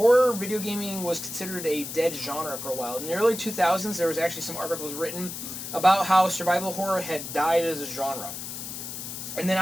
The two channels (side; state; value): left; noise; hiss, 8 dB below the sound